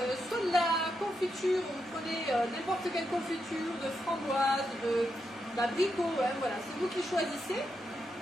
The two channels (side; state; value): both; normal; correlation 0.84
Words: soit de la confiture, vous prenez n'importe quelle confiture, de framboise, d'abricot, hein, voilà, c'est vous qui choisissez.